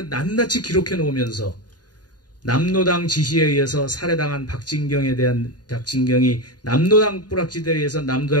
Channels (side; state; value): right; late; 0.69 ms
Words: 낱낱이 기록해 놓으면서 남로당 지시에 의해서 살해당한 박진경이 남로당 뿌락지대에 의해서